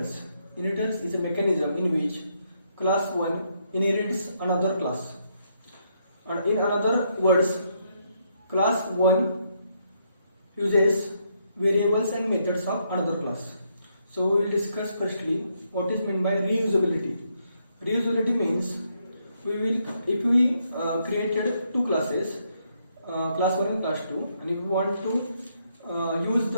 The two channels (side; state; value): both; inverted; correlation -0.75